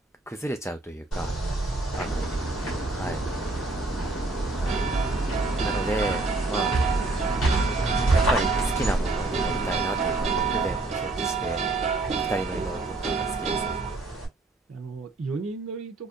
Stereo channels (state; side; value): quieter; left; 3.1 dB